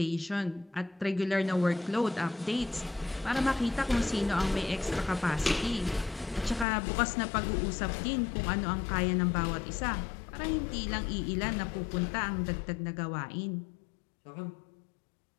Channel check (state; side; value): drops out; right; at 6.7 s